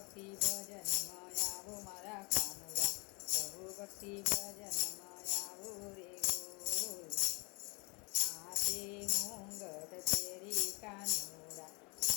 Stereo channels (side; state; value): right; quieter; 30.9 dB